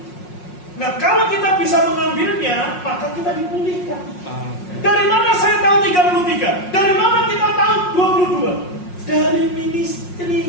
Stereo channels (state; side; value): late; right; 5.5 ms